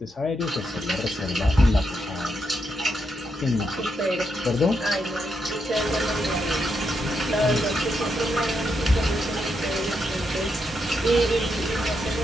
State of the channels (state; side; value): normal; both; correlation 0.81